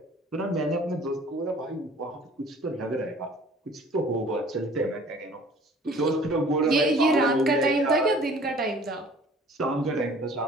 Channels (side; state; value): both; normal; correlation 0.50